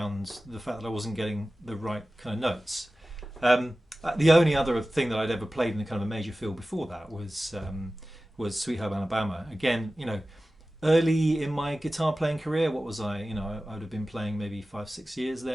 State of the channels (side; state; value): both; normal; correlation 0.96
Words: the fact that I wasn't getting the right kind of notes. The only other thing that I'd ever played in a kind of a major feel before that was Sweet Home Alabama. Again, you know, early in my guitar playing career, what was I? You know, I would have been playing maybe 5-6 years